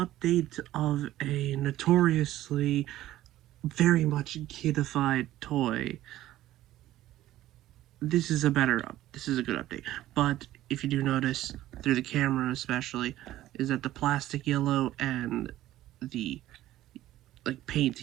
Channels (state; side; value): quieter; left; 14.5 dB